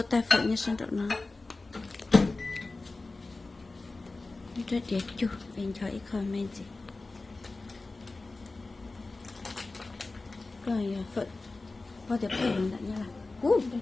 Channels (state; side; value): quieter; right; 3.4 dB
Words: tay phải như sang trọng nó rất đẹp chú anh chói comment gì rồi phận bao giờ phải làm như là